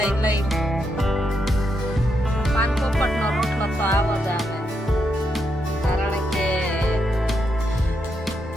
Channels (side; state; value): both; normal; correlation 0.81